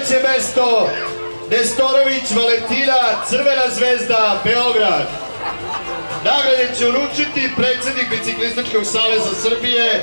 mesto, Nestorović Valentina, Crvena zvezda, Beograd. Nagrade će uručiti predsjednik Biciklističkog saveza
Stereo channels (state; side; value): inverted; both; correlation -1.00